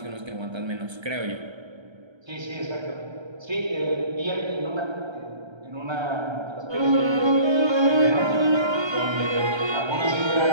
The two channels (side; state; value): left; late; 1.3 ms